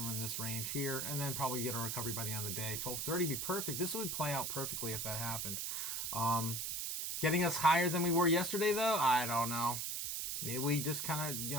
in this range here, and then probably get a recovery by the end of the day. 12:30 would be perfect. This would play out perfectly if that happened. Getting us higher than we were yesterday, though, I don't know. Maybe we just kind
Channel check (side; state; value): right; noise; hiss, 2 dB below the sound